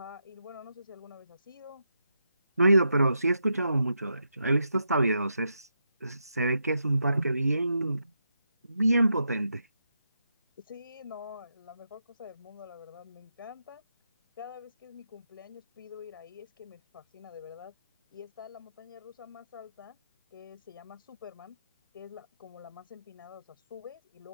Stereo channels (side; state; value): both; inverted; correlation -0.84